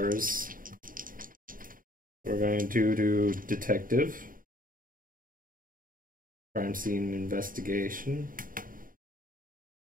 We're going to do detective. Crime scene investigation.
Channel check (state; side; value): late; left; 0.40 ms